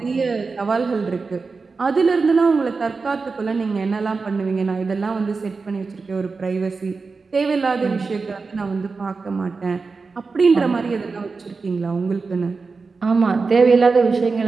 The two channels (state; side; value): quieter; left; 4.4 dB